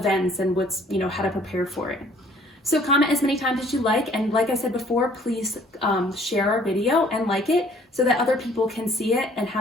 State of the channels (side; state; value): both; normal; correlation 0.57